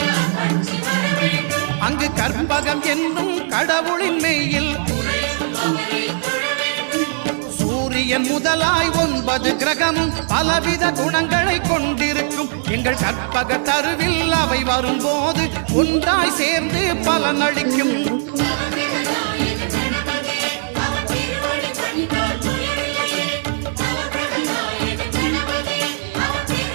அங்கு கற்பகம் என்னும் கடவுளின் மெய்யில் சூரியன் முதலாய் 9 கிரகமும் பலவித குணங்களை கொண்டிருக்கும். எங்கள் கற்பக தருவில் அவை வரும்போது ஒன்றாய் சேர்ந்து பலனளிக்கும்.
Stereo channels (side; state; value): left; silent; 60 dB below the other